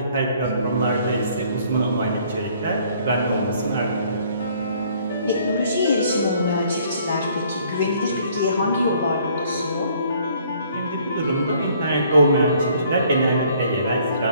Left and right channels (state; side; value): inverted; both; correlation -0.61